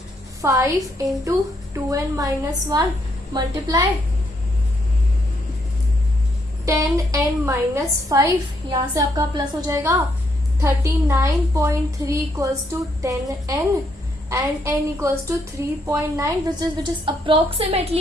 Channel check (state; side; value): normal; both; correlation 0.74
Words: 5 into 2n minus 1 multiply 10n minus 5. यहां से आपका प्लस हो जाएगा. 39.3 equals to 10n and n equals to 3.9 which is